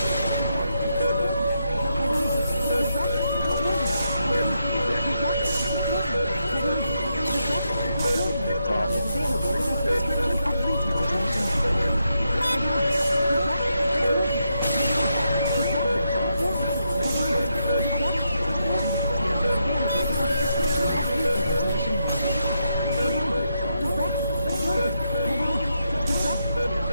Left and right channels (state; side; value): inverted; both; correlation -0.82